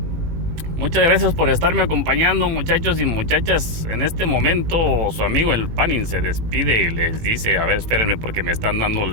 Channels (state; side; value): late; left; 18 ms